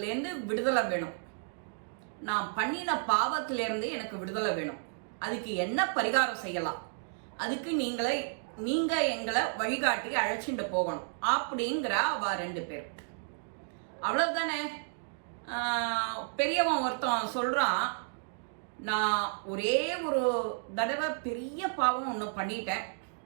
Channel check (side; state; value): left; silent; digital silence